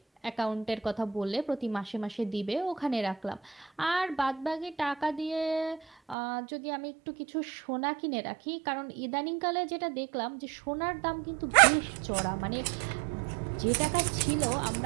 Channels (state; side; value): drops out; left; at 6.2 s